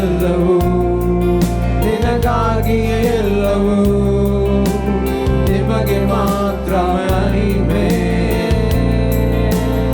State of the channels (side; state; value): both; identical; correlation 1.00